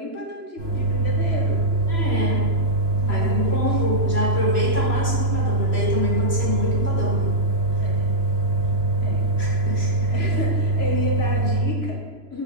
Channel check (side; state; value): left; late; 3.0 ms